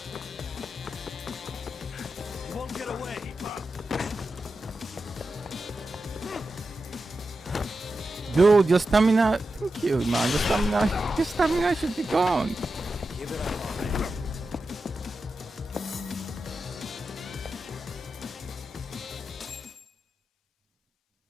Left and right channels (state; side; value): normal; both; correlation 0.91